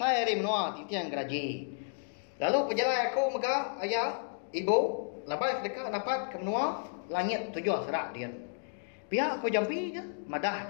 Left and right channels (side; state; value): right; silent; digital silence